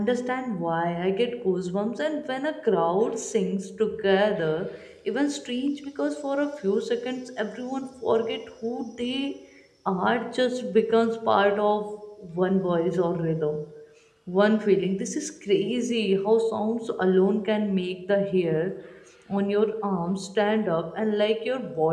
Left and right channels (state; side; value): identical; both; correlation 1.00